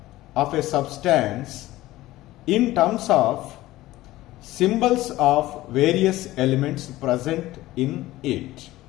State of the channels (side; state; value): right; quieter; 16.8 dB